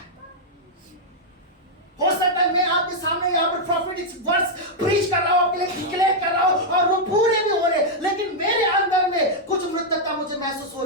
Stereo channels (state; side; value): normal; both; correlation -0.04